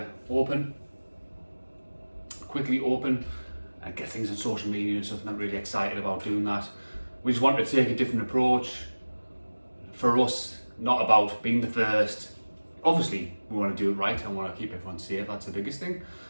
quickly open and get things on social media and stuff, and I'm really excited about doing that. We just wanted to take a different approach. For us, not about being the first. Obviously, we want to do it right and want to keep everyone safe, that's the biggest thing,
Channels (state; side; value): inverted; both; correlation -1.00